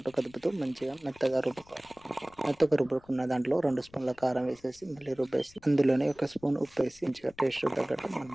కదుపుతూ మంచిగా మెత్తగా రుబ్బుకోవాలి. మెత్తగా రుబ్బుకున్న దాంట్లో 2 స్పూన్ల కారం వేసేసి మళ్ళీ రుబ్బేసి అందులోనే 1 స్పూన్ ఉప్పు వేసి మంచిగా టేస్ట్ తగ్గట్టు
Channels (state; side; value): noise; left; rumble, 27 dB below the sound